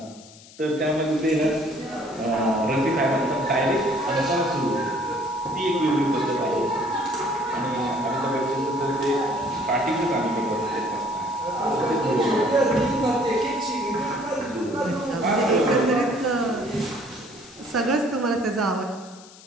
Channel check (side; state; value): left; noise; hiss, 21 dB below the sound